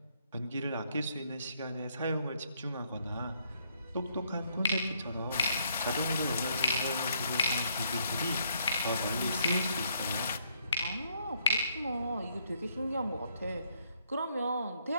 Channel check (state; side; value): inverted; both; correlation -0.71